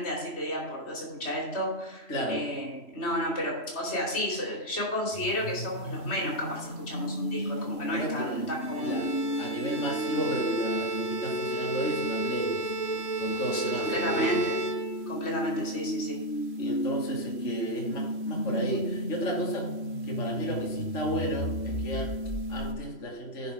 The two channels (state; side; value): late; right; 3.0 ms